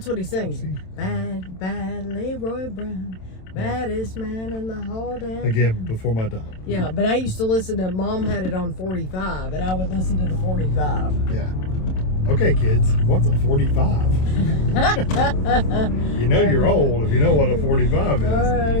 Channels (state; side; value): late; right; 27 ms